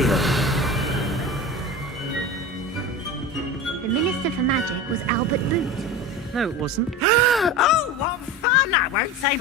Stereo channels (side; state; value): both; normal; correlation 0.29